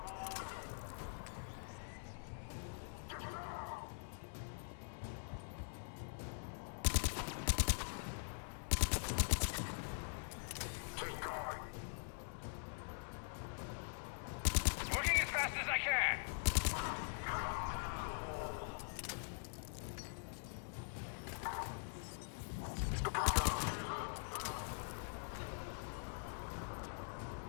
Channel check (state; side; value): silent; right; digital silence